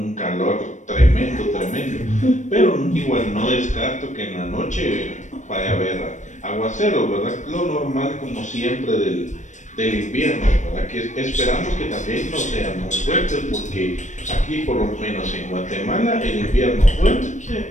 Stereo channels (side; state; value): right; late; 0.35 ms